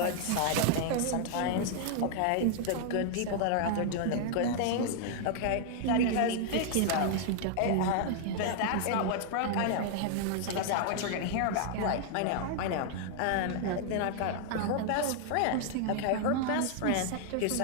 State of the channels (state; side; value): different; both; correlation 0.00